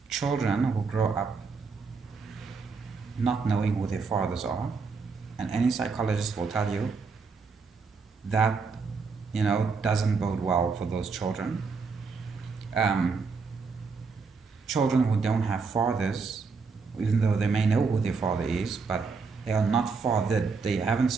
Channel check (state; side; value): quieter; left; 4.8 dB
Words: children who grow up not knowing who their fathers are, and any psychologist will tell you that, you know, doesn't bode well for those children. Children who don't have fathers, even though they may know who their father is, but they are not fathered. They haven't